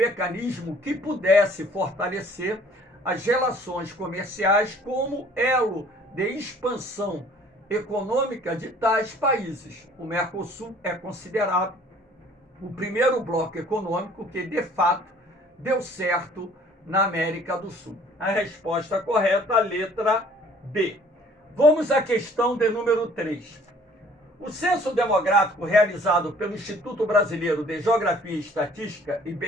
que pudesse fortalecer as relações comerciais como elo de expansão econômica de tais países. O Mercosul é considerado o primeiro bloco econômico que, de fato, deu certo na América do Sul. A resposta correta, a letra B. Vamos à questão de número 3. O censo demográfico realizado pelo Instituto Brasileiro de Geografia e Estatística,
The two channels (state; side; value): normal; both; correlation 0.55